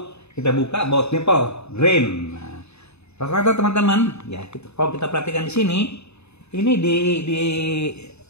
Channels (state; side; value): late; right; 0.80 ms